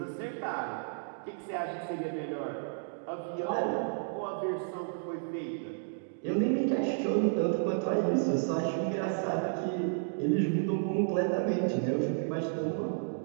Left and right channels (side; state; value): left; silent; digital silence